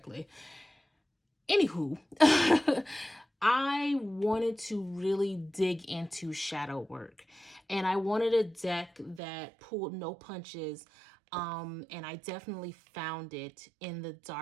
Anywho, I wanted to really dig into shadow work, and I wanted a deck that pulled no punches. And I definitely found it in the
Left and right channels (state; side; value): drops out; left; at 9.2 s